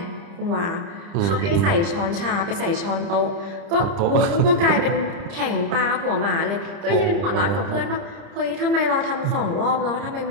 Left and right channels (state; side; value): late; left; 30 ms